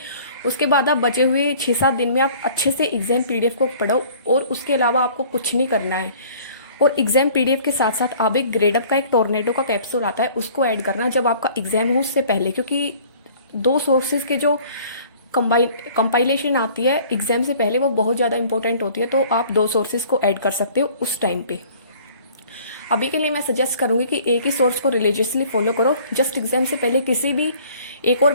उसके बाद आप बचे हुए 6-7 दिन में आप अच्छे से एग्जाम पीडीएफ को पढ़ो और उसके अलावा आपको कुछ नहीं करना है। और एग्जाम पीडीएफ के साथ साथ आप एक ग्रेडअप का एक टोर्नेडो का कैप्सूल आता है उसको ऐड करना जब आपका एग्जाम हो उससे पहले, क्योंकि 2 सोर्सेज के जो कंपाइलेशन आती है एग्जाम से पहले वो बहुत ज़्यादा इंपॉर्टेंट होती है। तो आप 2 सोर्सेज को ऐड कर सकते हो उस टाइम पे। अभी के लिए मैं सजेस्ट करूंगी कि एक ही सोर्स को रिलीजियसली फॉलो करो। जस्ट एग्जाम से पहले किसी भी एक और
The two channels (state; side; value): inverted; both; correlation -0.52